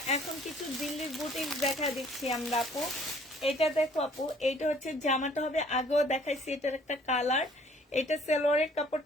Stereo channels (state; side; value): normal; both; correlation 0.58